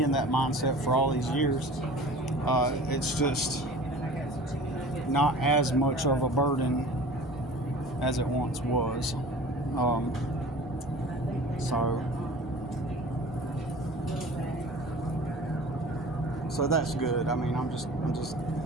in that mindset for all these years. It's just not as much of a burden as it once was. So that's good. I mean, I'm just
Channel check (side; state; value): both; normal; correlation 0.41